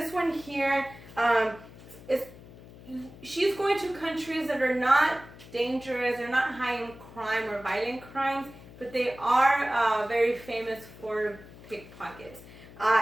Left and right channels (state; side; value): noise; left; hum, 19 dB below the sound